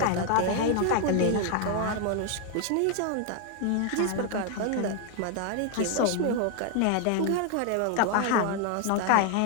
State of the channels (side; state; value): both; different; correlation 0.00